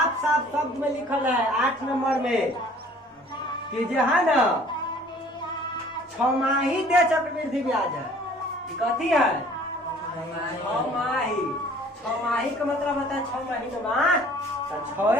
साफ शब्द में लिखल है 8 नंबर में कि जो है ना 6 दे चक्रवृद्धि ब्याज है। कथी है 6 माही का मतलब होता है 6 महीना तो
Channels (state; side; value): normal; both; correlation 0.53